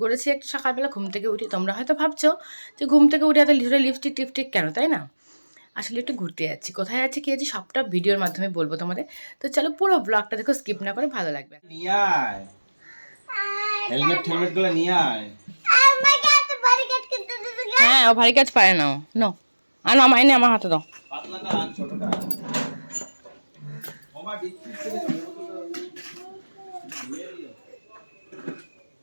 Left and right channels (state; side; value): inverted; both; correlation -1.00